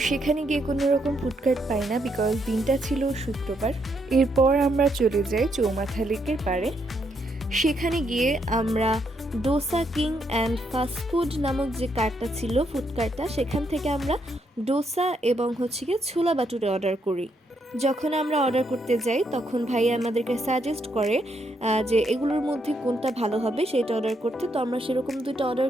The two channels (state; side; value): normal; both; correlation 0.76